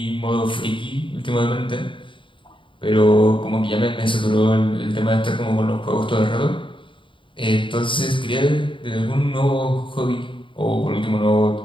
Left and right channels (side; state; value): right; late; 0.24 ms